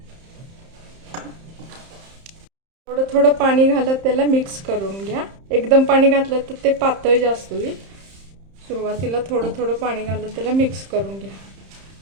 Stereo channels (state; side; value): late; left; 31 ms